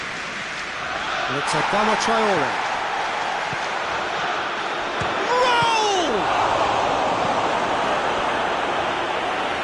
It's a Adama Traore. Roll!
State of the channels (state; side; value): identical; both; correlation 1.00